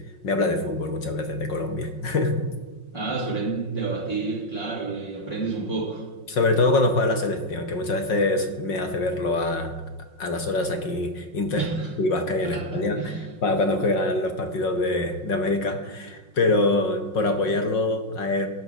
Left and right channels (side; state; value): right; late; 5.5 ms